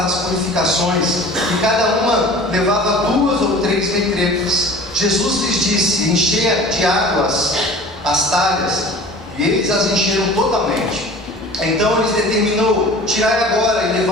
as purificações, e cada uma levava 2 ou 3 vetretas. Jesus lhes disse: enchei de águas as talhas, e eles as encheram totalmente. Então lhes determinou: tirai agora e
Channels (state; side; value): normal; both; correlation 0.42